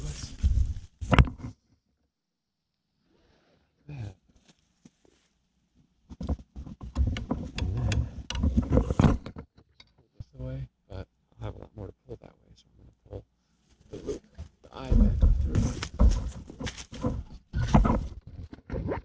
us. That. This away, but I'll have a lot more to pull that way, so I'm gonna pull the loop, the eye back through.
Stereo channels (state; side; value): identical; both; correlation 1.00